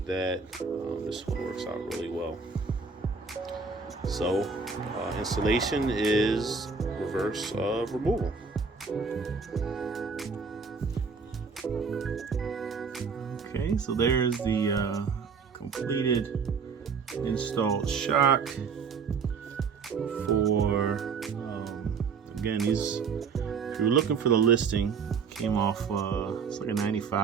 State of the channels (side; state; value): left; quieter; 5.3 dB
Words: that, this one works out really well. So installation is reverse removal. Okay, so there's the completed installed shock for again, these, if you're looking for the listing, Came off, it's like a